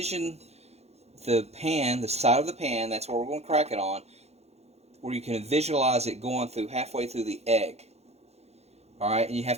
the pan, the side of the pan, that's where we're going to crack it on, where you can visualize it going through halfway through the egg. Alright, and you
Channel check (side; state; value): left; late; 0.31 ms